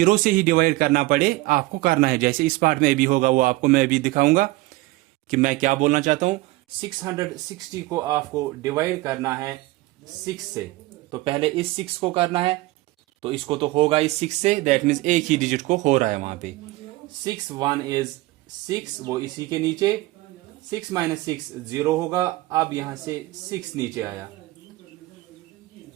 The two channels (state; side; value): quieter; left; 19.6 dB